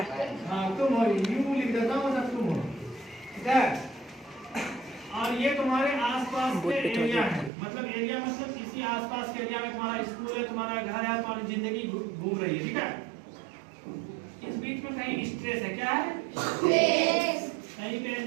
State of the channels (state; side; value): drops out; left; at 7.5 s